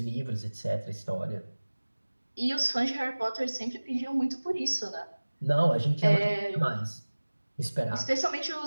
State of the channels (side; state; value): both; inverted; correlation -1.00